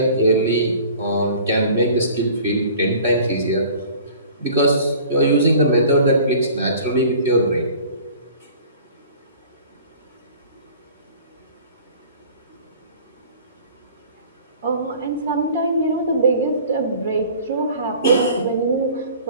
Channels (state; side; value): inverted; both; correlation -0.47